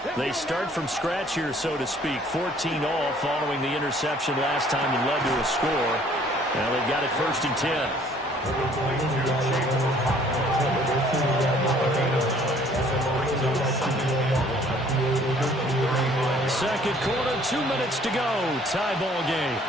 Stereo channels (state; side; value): normal; both; correlation 0.58